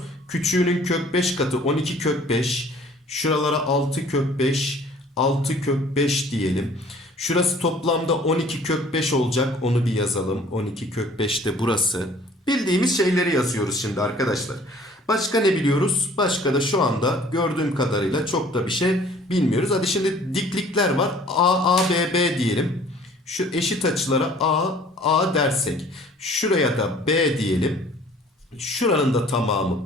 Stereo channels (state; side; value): normal; both; correlation 0.53